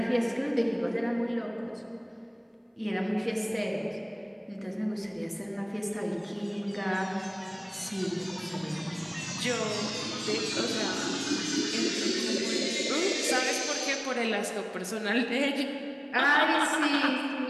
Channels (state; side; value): identical; both; correlation 1.00